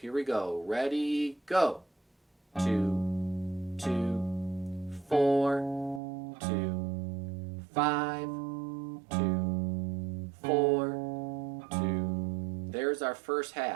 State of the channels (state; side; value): drops out; left; at 6.0 s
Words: we go. Ready, go. 2, 2, 4, 2, 5, 2, 4, 2. There's our first